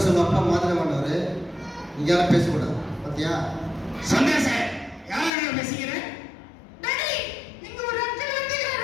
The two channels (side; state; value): right; drops out; at 5.3 s